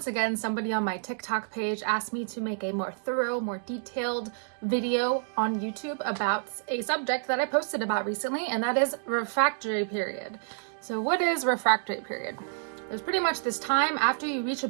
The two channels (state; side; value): silent; left; digital silence